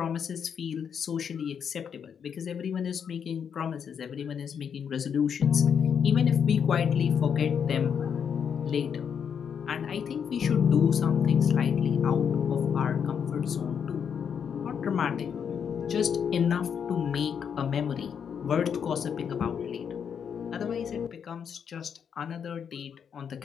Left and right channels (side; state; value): right; quieter; 7.4 dB